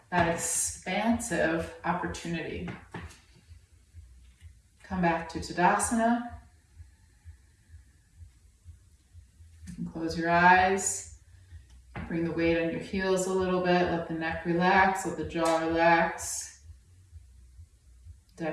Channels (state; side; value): identical; both; correlation 1.00